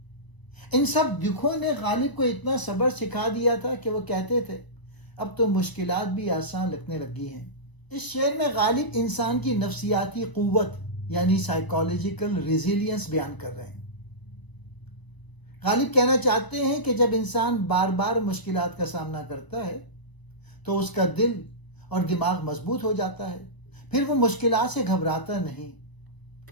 ان سب دکھوں نے غالب کو اتنا صبر سکھا دیا تھا کہ وہ کہتے تھے اب تو مشکلات بھی آسان لگنے لگی ہیں۔ اس شعر میں غالب انسان کی نفسیاتی قوت یعنی سائیکالوجیکل ریزیلینس بیان کر رہے ہیں۔ غالب کہنا چاہتے ہیں کہ جب انسان بار بار مشکلات کا سامنا کرتا ہے تو اس کا دل اور دماغ مضبوط ہو جاتا ہے، پھر وہ مشکلات سے گھبراتا نہیں۔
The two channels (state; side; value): late; right; 1.0 ms